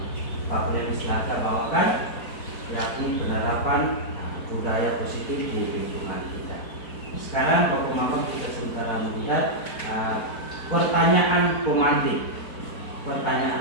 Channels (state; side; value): late; right; 4.4 ms